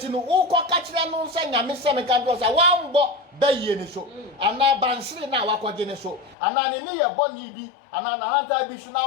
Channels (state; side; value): drops out; right; at 6.4 s